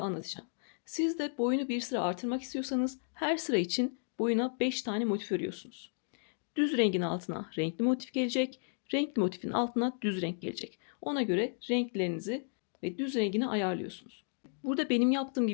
Siz de boyunu bir sıra artırmak istiyorsanız her sıra için boyuna 5 tane motif örüyorsunuz. Düz rengin altına renkli motif gelecek. Renkli motifin altına düz renk gelecek. Ona göre renklerinizi ve düz rengini ayarlıyorsunuz. Burada benim yaptığım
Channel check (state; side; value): silent; right; digital silence